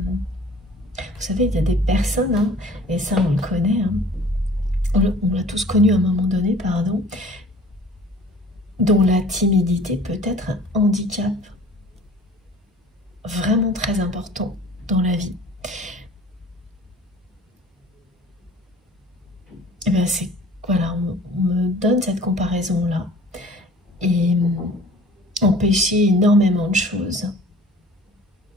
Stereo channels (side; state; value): both; normal; correlation 0.48